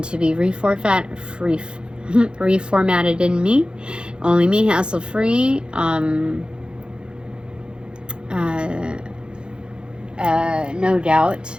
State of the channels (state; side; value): late; left; 0.051 ms